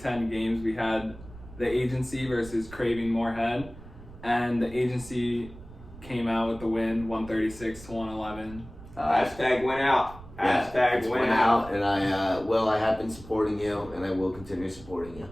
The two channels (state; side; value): noise; right; rumble, 17 dB below the sound